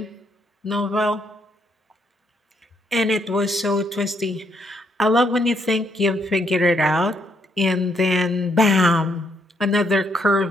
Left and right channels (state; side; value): normal; both; correlation 0.74